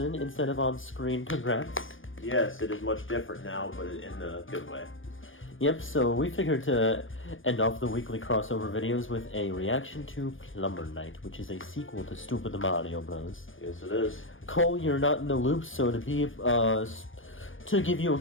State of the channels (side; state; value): right; late; 0.58 ms